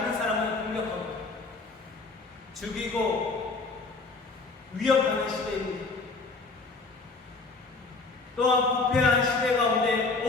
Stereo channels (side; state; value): right; quieter; 3.8 dB